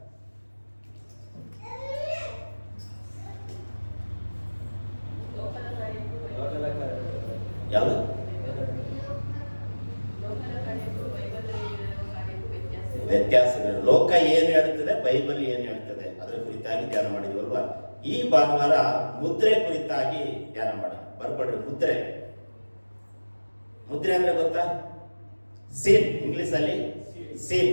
ಯಾವುದು? ವ್ಯತ್ಯಾಸಗಳು. ಲೋಕ ಏನು ಹೇಳ್ತದೆ, ಬೈಬಲ್ ಏನು ಹೇಳ್ತದೆ, ಅದರ ಕುರಿತಾಗಿ ಧ್ಯಾನ ಮಾಡಿದ್ವಲ್ವಾ? ಈ ಭಾನುವಾರ ಮುದ್ರೆ ಕುರಿತಾಗಿ ಧ್ಯಾನ ಮಾಡೋಣ. ಬರ್ಕೊಡ್ರಿ. ಮುದ್ರೆ, ಮುದ್ರೆ ಅಂದ್ರೆ ಗೊತ್ತಾ? ಸೀಲ್, ಇಂಗ್ಲಿಷ್ ಅಲ್ಲಿ ಸೀಲ್,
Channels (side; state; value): both; inverted; correlation -1.00